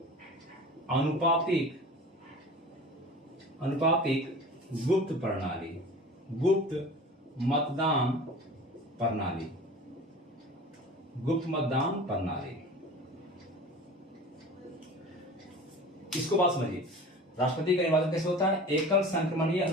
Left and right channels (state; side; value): normal; both; correlation 0.38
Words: अनुपातिक गुप्त मतदान प्रणाली। इसको बात समझिए, राष्ट्रपति का निर्वाचन कैसे होता है? एकल संक्रमणीय